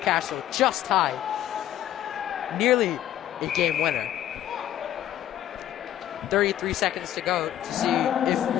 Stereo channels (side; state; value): right; quieter; 11.9 dB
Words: just high. Nearly a game winner. 33 seconds to go to see if